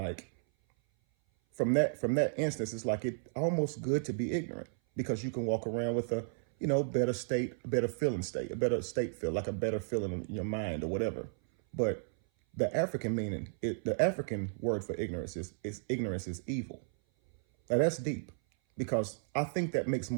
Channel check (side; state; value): left; silent; 55 dB below the other